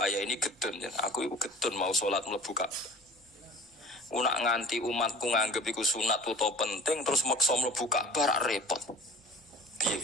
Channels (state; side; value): normal; both; correlation 0.42